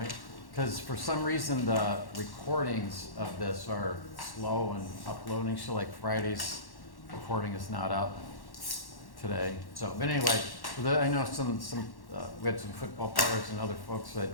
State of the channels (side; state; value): right; late; 1.1 ms